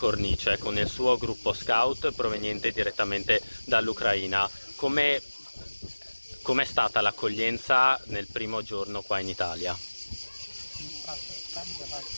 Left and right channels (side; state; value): both; inverted; correlation -1.00